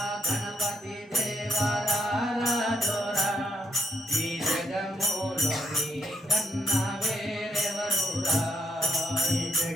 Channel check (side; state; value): both; normal; correlation 0.75